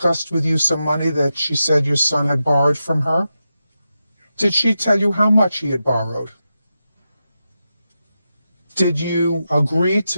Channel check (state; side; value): inverted; both; correlation -0.89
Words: with you some money that she said your son had borrowed from her? Did she tell you how much he had borrowed? Did you agree